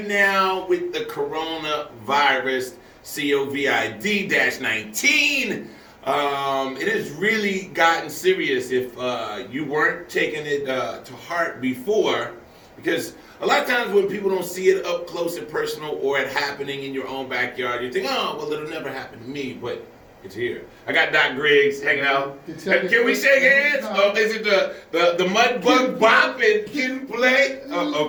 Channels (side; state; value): both; identical; correlation 1.00